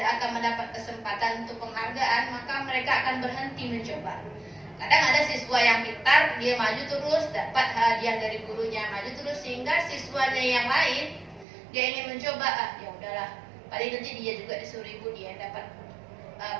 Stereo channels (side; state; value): left; drops out; at 11.5 s